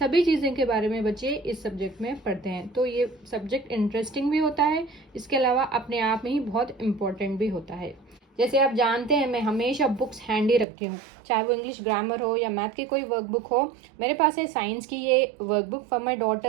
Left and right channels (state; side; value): drops out; left; at 10.7 s